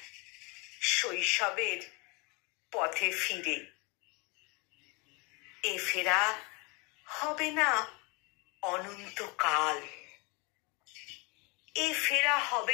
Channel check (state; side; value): quieter; right; 29.3 dB